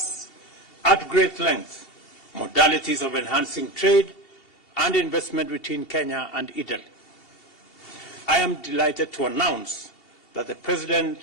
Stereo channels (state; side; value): late; right; 2.7 ms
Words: at great length modalities of enhancing trade and investment between Kenya and Italy. I am delighted to announce that the President